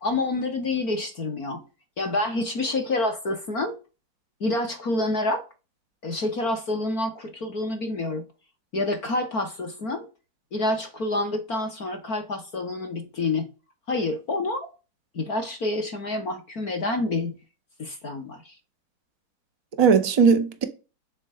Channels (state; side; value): late; right; 4.4 ms